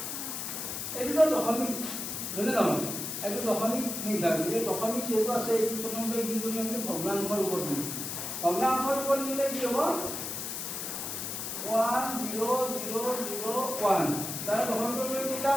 এইটো দশমিক হয়নে নহয় এইটো দশমিক সংখ্যা এই দশমিক যেটো আছে এই প্ৰথমতে কি কৰিম আমি ভগ্নাংশৰ ৰূপত দিম ভগ্নাংশৰ ৰূপত দিলে কি হ'ব 1 0 0 0 1 তাৰ দশমিক কেইটা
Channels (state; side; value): noise; left; hiss, 5 dB below the sound